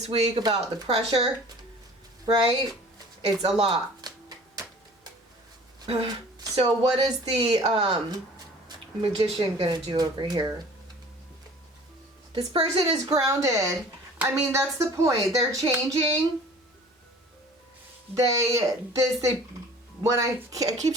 week about the pressure, right? It's a lot. So what is the Magician gonna do over here? This person is grounded. I mean, that's the point. They're changing. When I keep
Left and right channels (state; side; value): normal; both; correlation 0.47